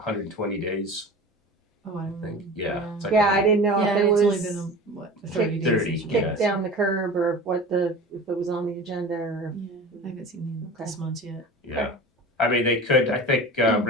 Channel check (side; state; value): both; normal; correlation 0.36